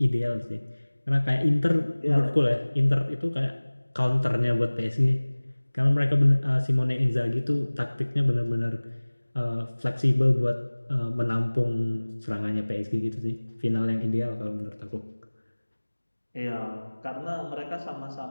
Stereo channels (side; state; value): both; inverted; correlation -1.00